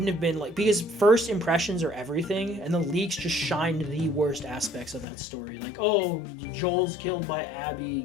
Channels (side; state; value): right; drops out; at 5.1 s